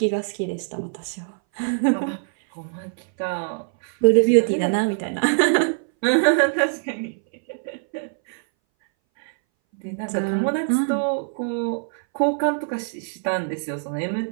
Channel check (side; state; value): left; silent; 61 dB below the other